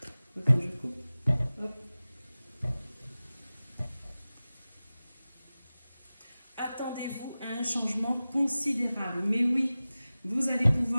Attends, je coupe. Hop. Attendez-vous à un changement considérable. Mais oui, vous allez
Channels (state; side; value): inverted; both; correlation -0.97